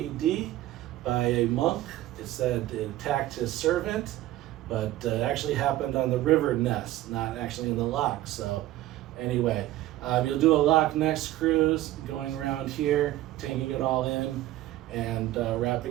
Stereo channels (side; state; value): left; quieter; 15.2 dB